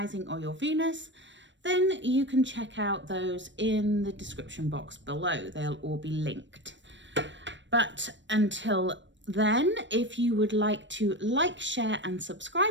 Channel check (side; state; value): left; late; 0.53 ms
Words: or your Venus, then you can check out those in the description box below. They'll all be linked. But until then, if you would like to like, share, and